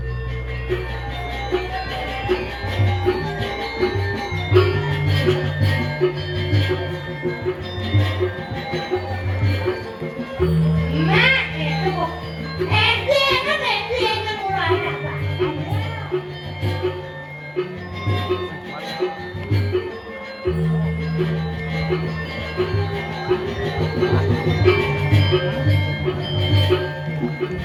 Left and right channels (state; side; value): identical; both; correlation 1.00